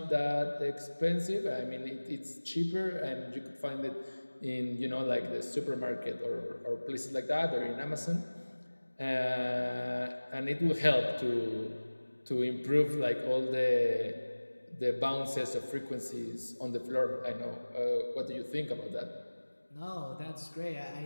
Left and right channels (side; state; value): both; inverted; correlation -1.00